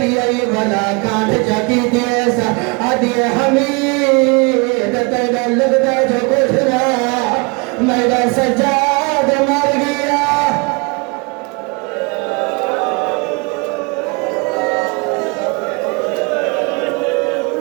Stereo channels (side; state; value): left; quieter; 29.6 dB